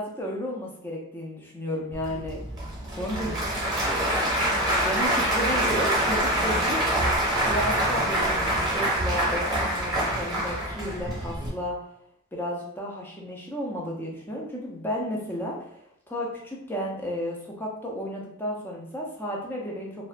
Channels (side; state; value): both; normal; correlation 0.19